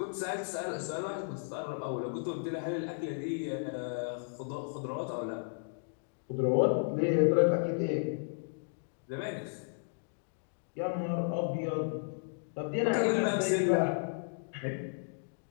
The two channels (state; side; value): silent; right; digital silence